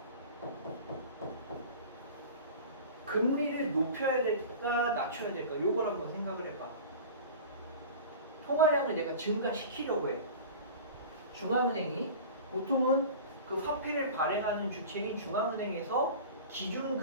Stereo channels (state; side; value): inverted; both; correlation -0.36